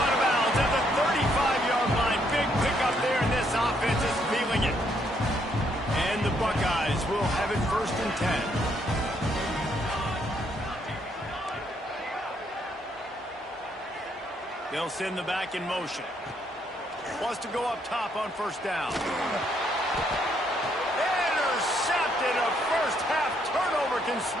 of bounds at the 35-yard line. Big pickup there, and this offense is feeling it. And the Buckeyes will have it 1st and 10. They'll send the back in motion. Wants to go up top on 1st down. Intercepted. A first half turnover can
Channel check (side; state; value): both; normal; correlation 0.72